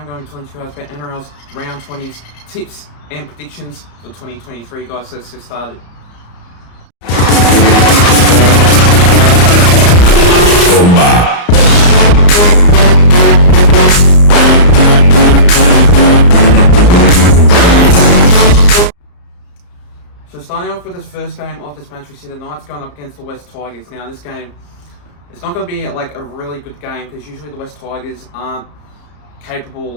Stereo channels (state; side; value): late; right; 34 ms